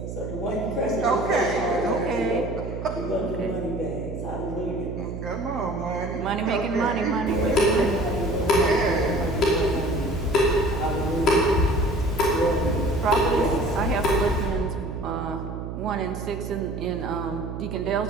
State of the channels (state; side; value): noise; right; hum, 7 dB below the sound